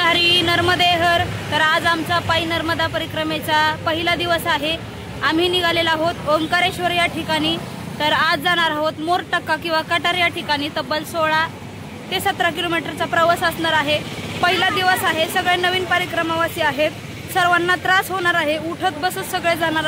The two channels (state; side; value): identical; both; correlation 1.00